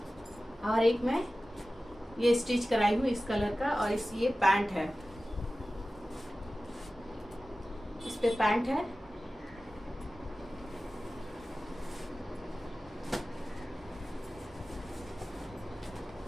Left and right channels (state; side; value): normal; both; correlation 0.96